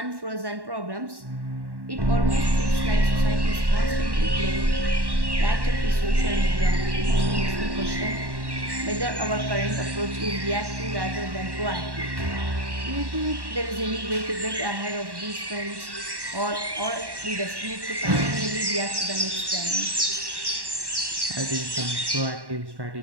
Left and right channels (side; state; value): left; late; 1.1 ms